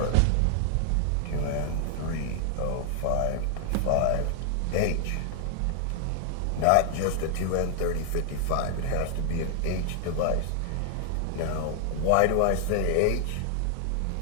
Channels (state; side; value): different; both; correlation 0.00